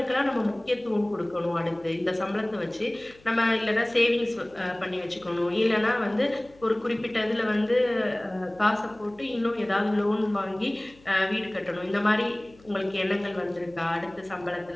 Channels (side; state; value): left; noise; hum, 26 dB below the sound